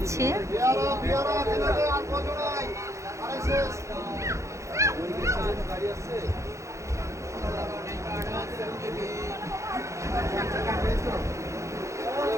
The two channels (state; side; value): late; left; 0.14 ms